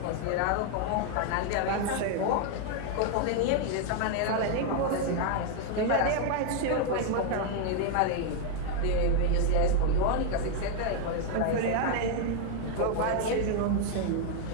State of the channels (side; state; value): both; different; correlation 0.00